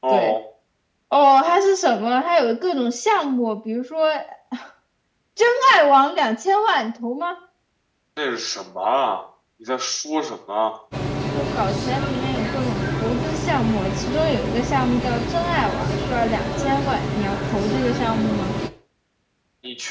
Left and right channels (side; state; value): both; identical; correlation 1.00